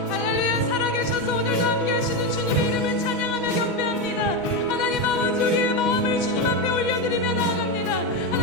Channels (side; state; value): right; late; 6.2 ms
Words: 할렐루야. 살아계셔서 오늘도 함께 하시는 주님의 이름을 찬양하며 경배합니다. 하나님 아버지 우리의 마음을 주님 앞에 올려드리며 나아갑니다.